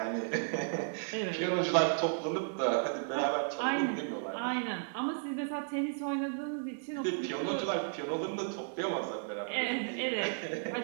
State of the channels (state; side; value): silent; left; digital silence